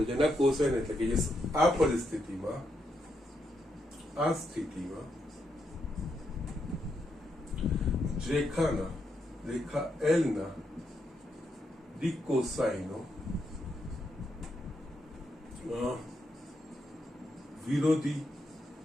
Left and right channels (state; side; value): normal; both; correlation 0.81